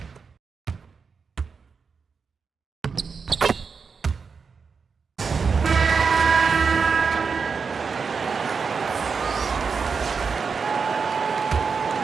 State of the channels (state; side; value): quieter; left; 5.4 dB